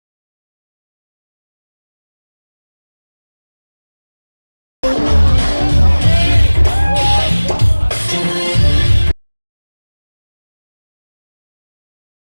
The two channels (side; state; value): both; inverted; correlation -1.00